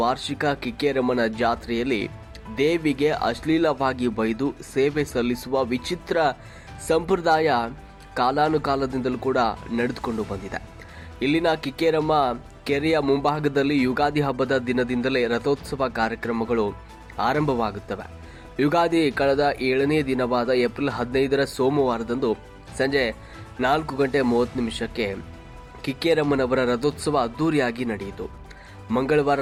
ವಾರ್ಷಿಕ ಕಿಕ್ಕೇರಮ್ಮನ ಜಾತ್ರೆಯಲ್ಲಿ ದೇವಿಗೆ ಅಶ್ಲೀಲವಾಗಿ ಬೈದು ಸೇವೆ ಸಲ್ಲಿಸುವ ವಿಚಿತ್ರ ಸಂಪ್ರದಾಯ ಕಾಲಾನುಕಾಲದಿಂದಲೂ ಕೂಡ ನಡೆದುಕೊಂಡು ಬಂದಿದೆ. ಇಲ್ಲಿನ ಕಿಕ್ಕೇರಮ್ಮ ಕೆರೆಯ ಮುಂಭಾಗದಲ್ಲಿ ಯುಗಾದಿ ಹಬ್ಬದ ದಿನದಿಂದಲೇ ರಥೋತ್ಸವ ಕಾರ್ಯಕ್ರಮಗಳು ಆರಂಭವಾಗುತ್ತವೆ. ಯುಗಾದಿ ಕಳೆದ 7ನೇ ದಿನವಾದ ಏಪ್ರಿಲ್ 15ರ ಸೋಮವಾರದಂದು ಸಂಜೆ 4:30 ಕಿಕ್ಕೇರಮ್ಮನವರ ರಥೋತ್ಸವ ಅದ್ದೂರಿಯಾಗಿ ನಡೆಯಿತು. ಮಂಗಳವಾರ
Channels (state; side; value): identical; both; correlation 1.00